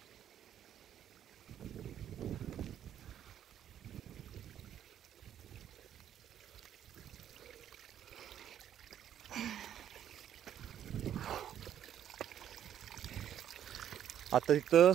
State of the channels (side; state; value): left; quieter; 10.3 dB